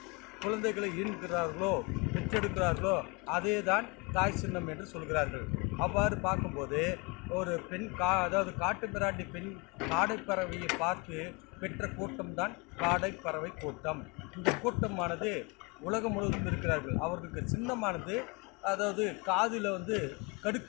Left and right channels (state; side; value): quieter; right; 29.4 dB